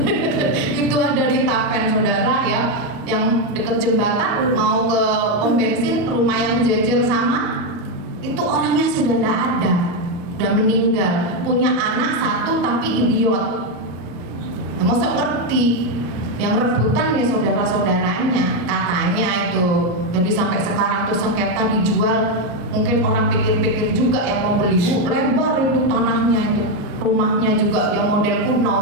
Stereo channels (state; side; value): late; left; 34 ms